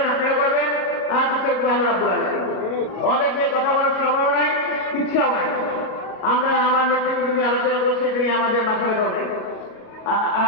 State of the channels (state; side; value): late; right; 38 ms